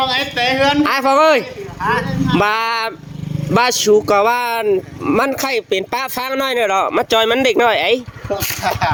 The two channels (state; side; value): identical; both; correlation 1.00